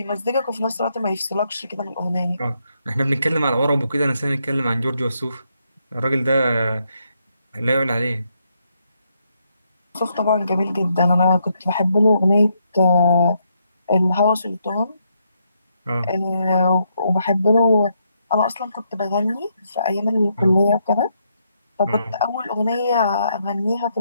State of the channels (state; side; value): inverted; both; correlation -0.77